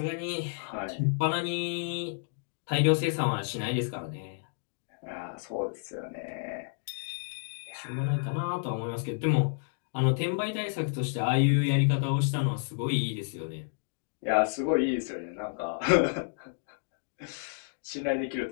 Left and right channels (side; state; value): right; silent; digital silence